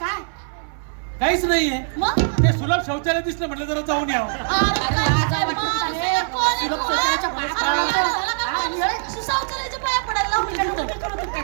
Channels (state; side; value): silent; left; 59 dB below the other